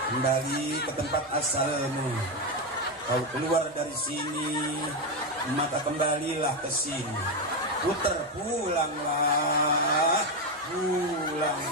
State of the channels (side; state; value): both; normal; correlation 0.09